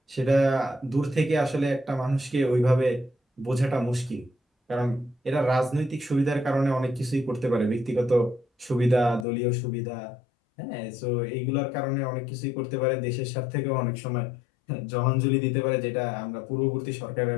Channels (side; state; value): right; drops out; at 9.2 s